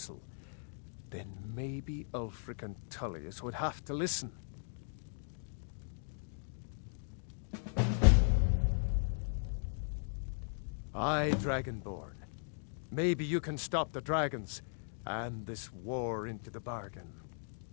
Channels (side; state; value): right; silent; digital silence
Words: then maybe Ulfric and Tullius would have to listen. Aye, Dragonborn. Maybe you can stop the dragons, and this war into the bargain.